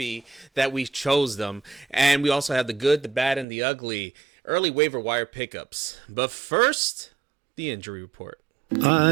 that we chose them. And we also have the good, the bad, and the ugly early waiver wire pickups. But first, the injury report.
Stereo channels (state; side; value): drops out; left; at 3.5 s